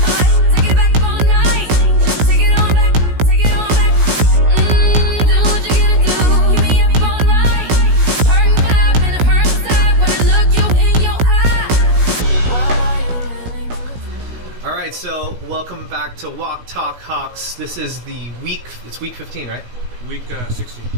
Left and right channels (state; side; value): late; left; 16 ms